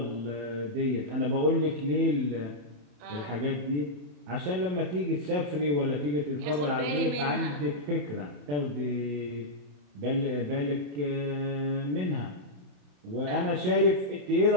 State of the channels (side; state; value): left; late; 27 ms